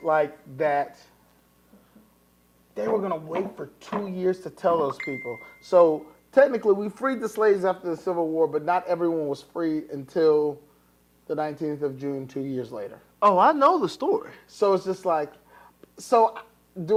like that, they were going to wait for 2 years to tell those people. So technically, we freed the slaves after the Civil War, but not everyone was freed until the 19th of June, 2 years later. Oh, I know the story. So it's just like, so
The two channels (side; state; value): both; identical; correlation 1.00